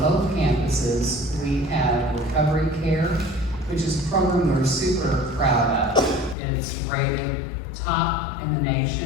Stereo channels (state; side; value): drops out; right; at 6.4 s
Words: campuses, we have recovery care, which is a program we're super proud of. It's rated top in the